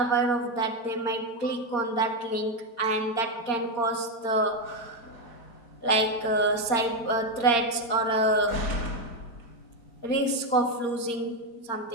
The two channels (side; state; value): right; late; 4.3 ms